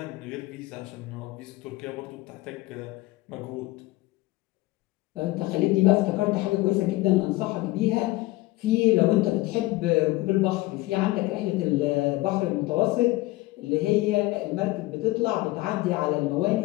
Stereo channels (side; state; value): right; quieter; 19.5 dB